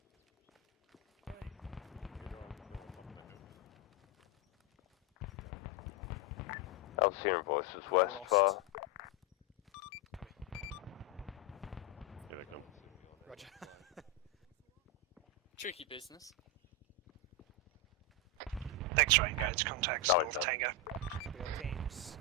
I was hearing voices west far. Here they come. Roger. Tricky business. X-ray engage contacts No, North Tango. Copy all teams.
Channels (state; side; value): normal; both; correlation 0.05